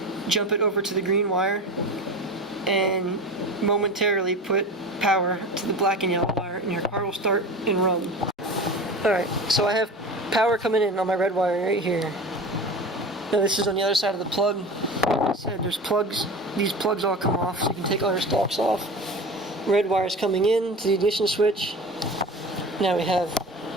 jump it over to the green wire, and momentarily put power to the black and yellow wire, and your car will start and run. Alright, so I have power coming in on my red wire right here. Now this is on the other side of the plug. Like I said, there's plugs. These plugs all come off, so you can take all your stalks off. Red wire's coming in to the ignition switch. Now we have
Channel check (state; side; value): normal; both; correlation 0.32